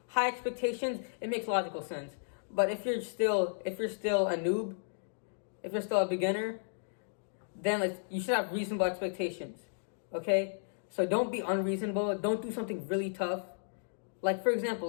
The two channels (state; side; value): silent; right; digital silence